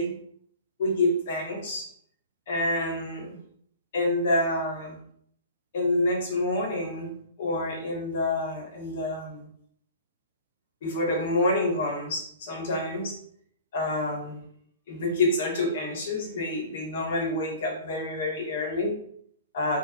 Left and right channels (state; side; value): inverted; both; correlation -0.46